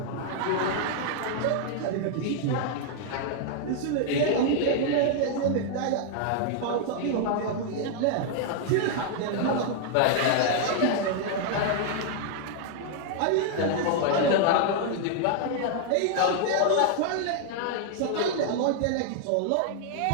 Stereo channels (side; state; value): both; different; correlation 0.00